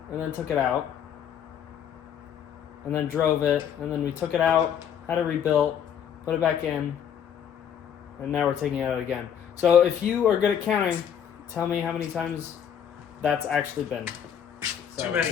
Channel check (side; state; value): right; quieter; 8.7 dB